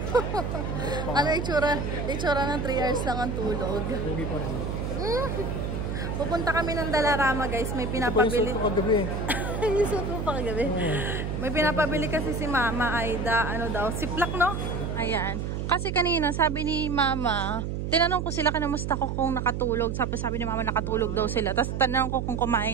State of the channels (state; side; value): noise; right; hum, 3 dB below the sound